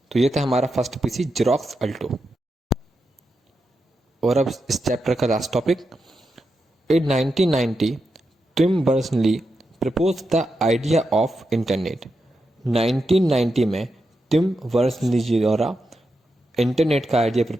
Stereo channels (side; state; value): both; normal; correlation 0.87